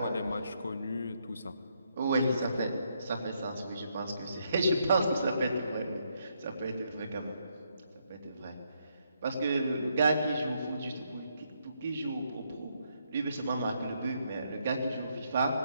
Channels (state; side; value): inverted; both; correlation -0.76